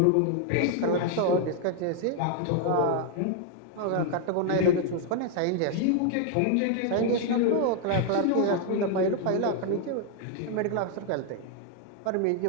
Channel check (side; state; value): both; different; correlation 0.00